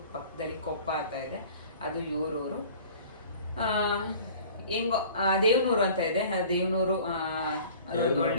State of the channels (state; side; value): inverted; both; correlation -0.46